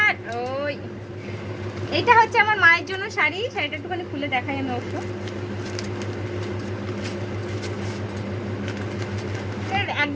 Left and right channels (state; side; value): identical; both; correlation 1.00